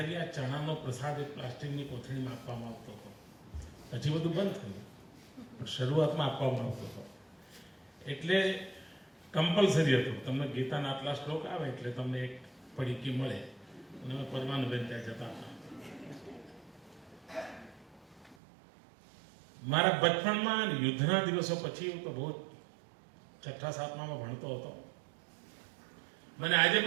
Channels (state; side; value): drops out; left; at 18.4 s